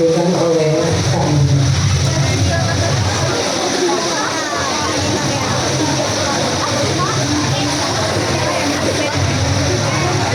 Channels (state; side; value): identical; both; correlation 1.00